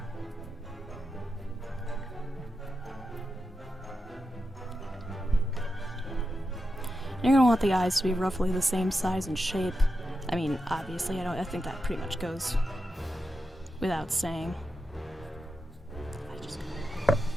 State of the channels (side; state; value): both; normal; correlation 0.89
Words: You're going to want the eyes to be roughly the same size and shape. I mean, obviously, I think that pretty much goes without saying.